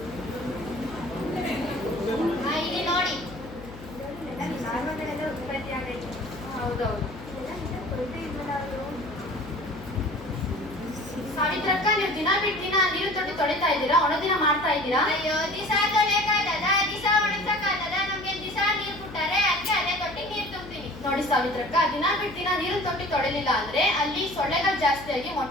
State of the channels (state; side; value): noise; left; hum, 15 dB below the sound